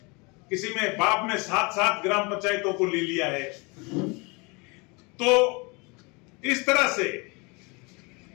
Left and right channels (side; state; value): right; quieter; 28.9 dB